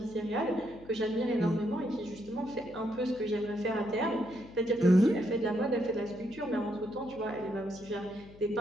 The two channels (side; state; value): left; noise; hum, 21 dB below the sound